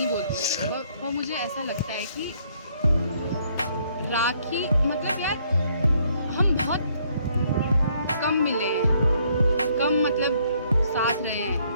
बोलती, और मुझे ऐसा लगता है कि राखी मतलब यार हम बहुत कम मिले हैं, कम मतलब साथ रहे हैं,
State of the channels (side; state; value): both; inverted; correlation -0.68